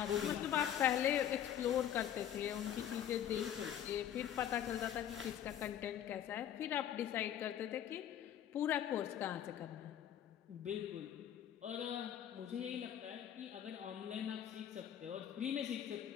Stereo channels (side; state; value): right; quieter; 10.2 dB